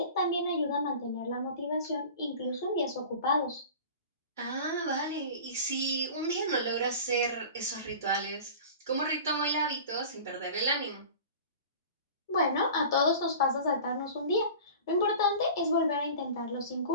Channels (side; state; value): both; inverted; correlation -0.38